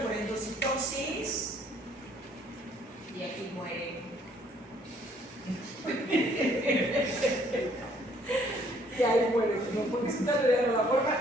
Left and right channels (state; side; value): normal; both; correlation 0.63